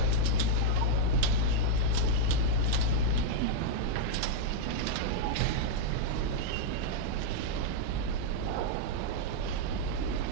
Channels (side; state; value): both; different; correlation -0.02